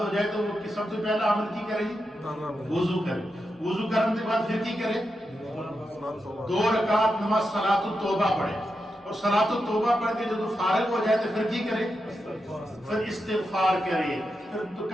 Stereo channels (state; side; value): normal; both; correlation 0.87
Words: ہو جائے تو وہ سب سے پہلا عمل کی کرے گی؟ وضو کرے، وضو کرنے کے بعد پھر کی کرے؟ 2 رکعت نماز صلاۃ التوبہ پڑھے، اور صلاۃ التوبہ پڑھ کے جب فارغ ہو جائے تو پھر کی کرے؟ پھر استغفار کرے، پھر